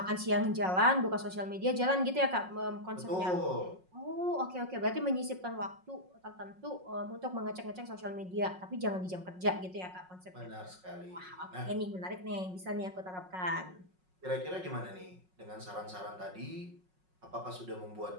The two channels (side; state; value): left; late; 5.5 ms